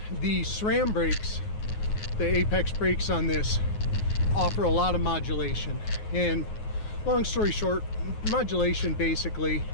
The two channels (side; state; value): right; late; 9.5 ms